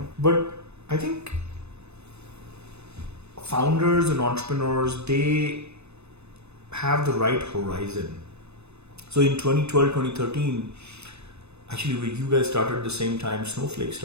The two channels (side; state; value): left; late; 0.80 ms